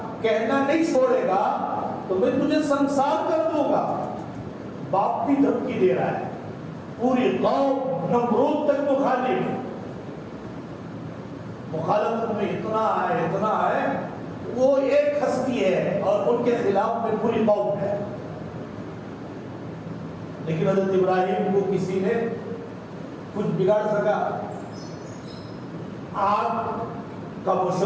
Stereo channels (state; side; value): identical; both; correlation 1.00